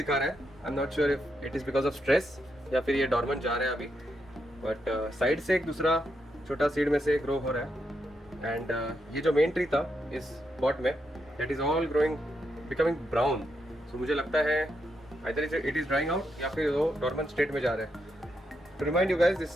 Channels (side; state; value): both; normal; correlation 0.82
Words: रहा है। आई am not sure if it is because of stress या फिर ये डॉर्मेंट जा रहा है अभी, बट साइड से एक दूसरा छोटा सीड में से ग्रो हो रहा है। एंड ये जो मेन ट्री था इस पॉट में, that is all growing becoming brown. So मुझे लगता है either it is drying out या फिर वो डॉर्मेंट स्टेट में जा रहा है। To remind you guys,